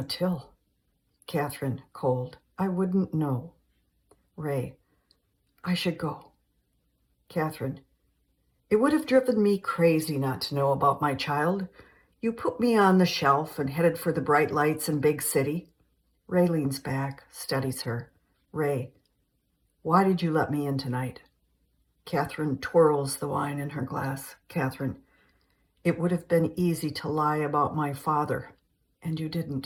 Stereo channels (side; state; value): both; identical; correlation 1.00